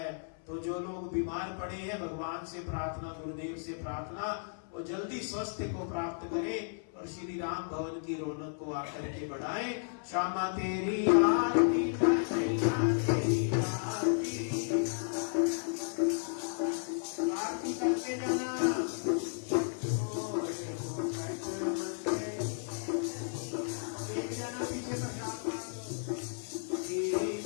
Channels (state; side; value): silent; right; 55 dB below the other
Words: तो जो लोग बीमार पड़े हैं, भगवान से प्रार्थना, गुरुदेव से प्रार्थना, वो जल्दी स्वास्थ्य को प्राप्त करें और श्री राम भवन की रौनक को आकर के बढ़ाएं। श्यामा तेरी आरती, तेरी आरती, आरती करके जाना। एक जाना पीछे प्रसाद